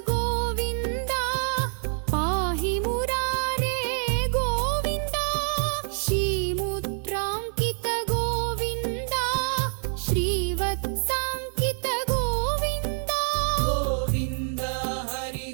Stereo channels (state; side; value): silent; left; 61 dB below the other